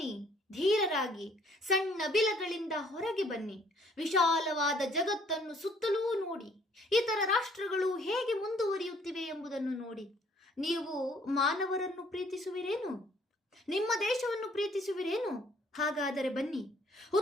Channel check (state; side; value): normal; both; correlation 0.61